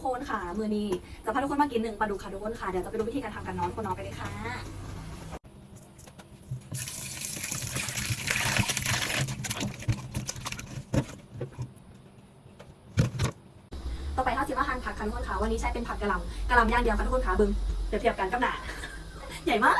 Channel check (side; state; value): both; identical; correlation 1.00